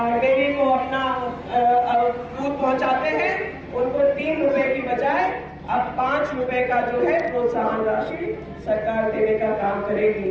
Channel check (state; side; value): identical; both; correlation 1.00